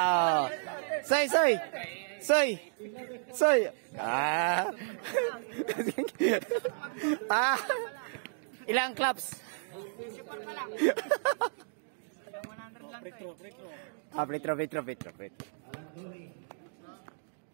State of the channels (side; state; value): left; silent; digital silence